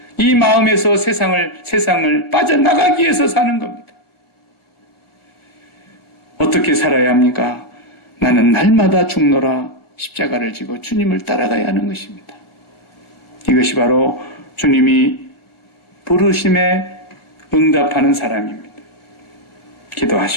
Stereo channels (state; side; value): late; right; 1.4 ms